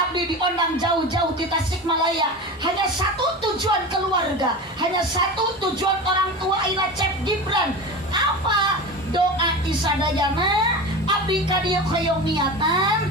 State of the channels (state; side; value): normal; both; correlation 0.28